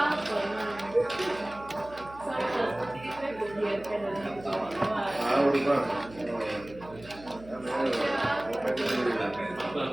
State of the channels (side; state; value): right; noise; hum, 19 dB below the sound